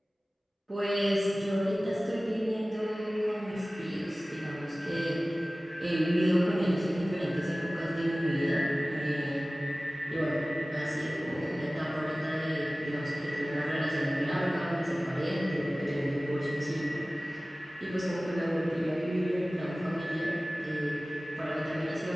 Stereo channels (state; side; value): normal; both; correlation 0.97